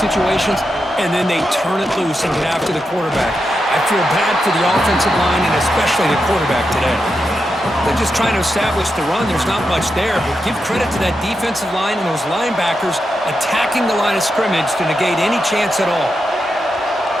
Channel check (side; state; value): both; normal; correlation 0.87